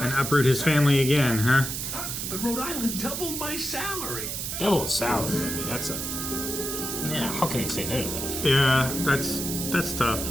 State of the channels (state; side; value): noise; right; hiss, 4 dB below the sound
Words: uproot his family again, huh? But Rhode Island doubled my salary. Double the salary. I mean, that's a. Yeah. How can he say no to that? Yeah, that's tough.